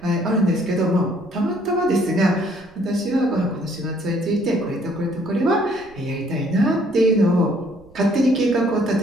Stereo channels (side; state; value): right; noise; rumble, 27 dB below the sound